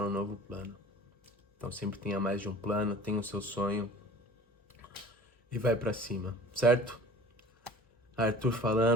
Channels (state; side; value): normal; both; correlation 0.43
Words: um novo plano. Então sempre tenha mais de um plano, tenha o seu sonho e vai pra cima, certo? Arthur